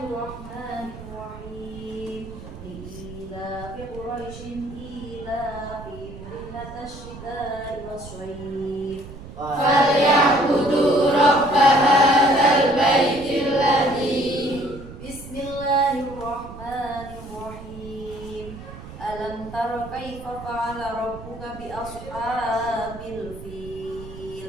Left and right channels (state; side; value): noise; right; rumble, 14 dB below the sound